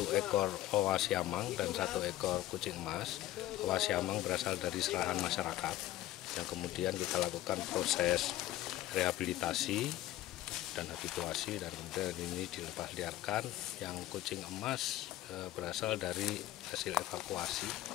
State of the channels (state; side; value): quieter; right; 14.9 dB